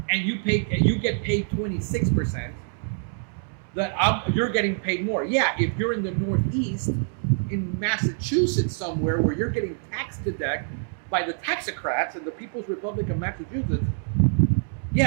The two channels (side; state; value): left; silent; 61 dB below the other